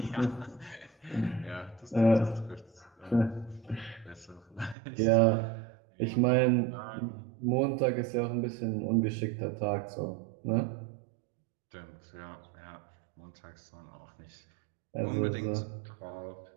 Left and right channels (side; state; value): left; drops out; at 4.8 s